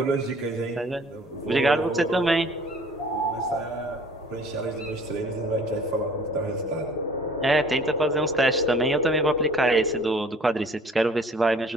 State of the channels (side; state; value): both; normal; correlation 0.51